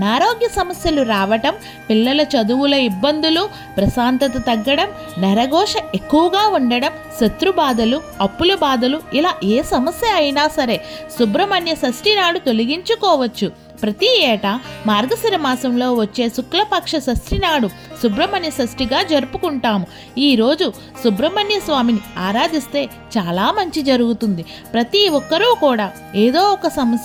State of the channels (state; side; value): identical; both; correlation 1.00